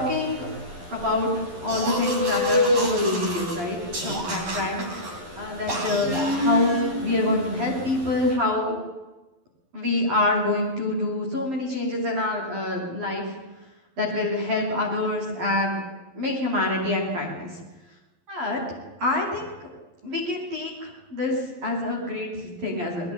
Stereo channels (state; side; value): late; left; 11 ms